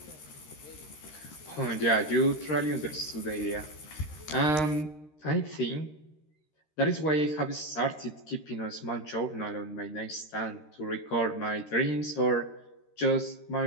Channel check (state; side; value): late; right; 13 ms